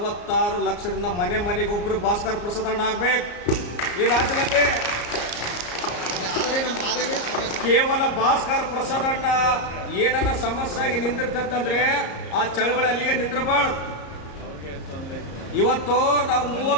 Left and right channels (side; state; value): right; late; 34 ms